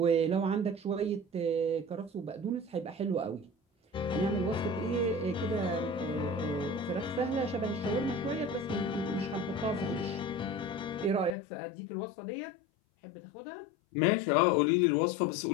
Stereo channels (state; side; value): drops out; right; at 11.4 s